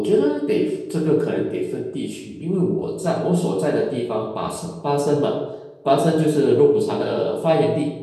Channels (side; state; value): both; identical; correlation 1.00